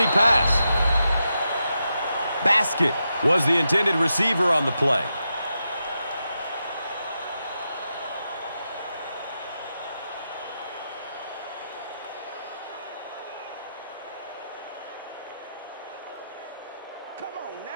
pass. Basket was the intended receiver on the play. Come on,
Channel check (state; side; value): inverted; both; correlation -0.86